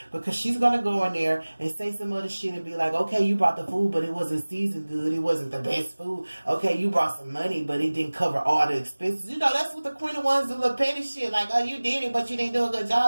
because she's gonna go in there and say some other shit and be like, okay, you brought the food, but it wasn't seasoned good. It wasn't the best food. Okay, you brought some money, but it didn't cover all the expenses. You know, that's what the Queen of Wands do, little petty shit. Like, oh, you did it, but you didn't do a good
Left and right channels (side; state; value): both; inverted; correlation -1.00